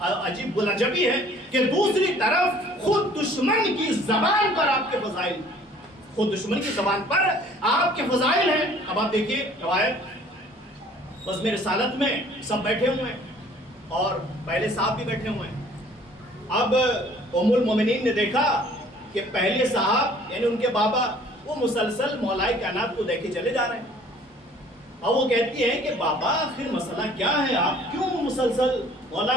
بلجبی ہے کہ دوسری طرف خود دشمن کی زبان پر آپ کے فضائل, خود دشمن کی زبان پر آپ کے فضائل ہیں. اب آپ دیکھیے روایت بزم رسالت میں سب بیٹھے ہوئے ہیں اور پہلے صاحب بھی بیٹھے ہوئے ہیں. اب ام المومنین نے دیکھا کہ پہلے صاحب یعنی ان کے بابا وہ مسلسل مولا کائنات کو دیکھے چلے جا رہے ہیں. اور وہ کہتی ہے کہ بابا آخر مسئلہ کیا ہے, آپ کیوں مسلسل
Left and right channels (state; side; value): normal; both; correlation 0.54